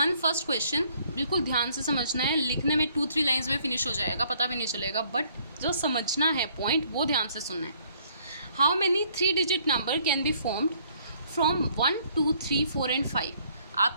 फर्स्ट क्वेश्चन, बिल्कुल ध्यान से समझना है, लिखने में 2-3 लाइन्स में फिनिश हो जाएगा, पता भी नहीं चलेगा, बट जो समझना है पॉइंट वो ध्यान से सुनना है। How many 3 digit number can be formed from 1, 2, 3, 4 and 5?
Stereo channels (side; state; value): both; inverted; correlation -0.63